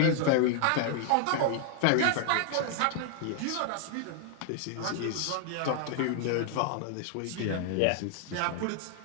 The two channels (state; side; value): different; both; correlation 0.00